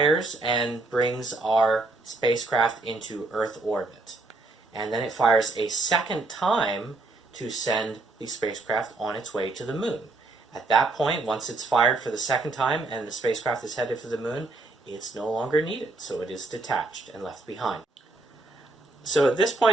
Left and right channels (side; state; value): left; quieter; 3.2 dB